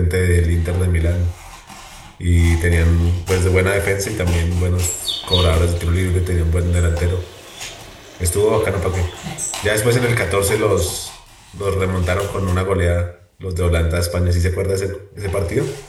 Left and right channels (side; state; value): both; identical; correlation 1.00